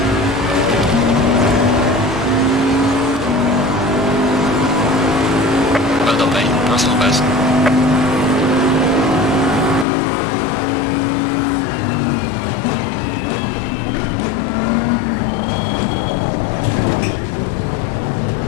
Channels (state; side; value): drops out; right; at 9.9 s